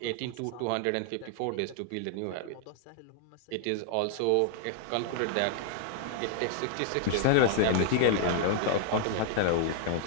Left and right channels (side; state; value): both; different; correlation 0.00